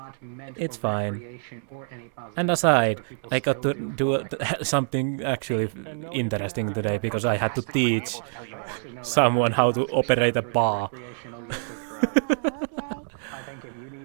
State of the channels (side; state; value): left; silent; digital silence